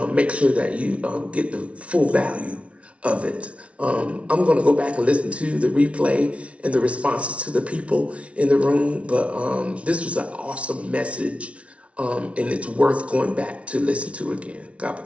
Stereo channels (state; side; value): late; left; 0.062 ms